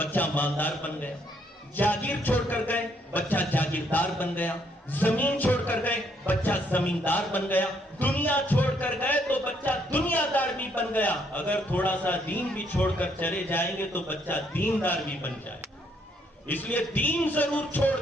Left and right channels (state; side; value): normal; both; correlation 0.71